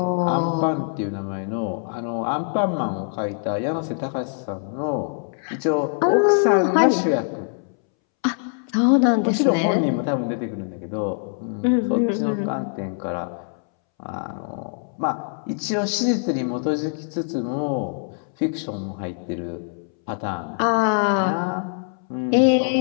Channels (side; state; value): right; silent; 63 dB below the other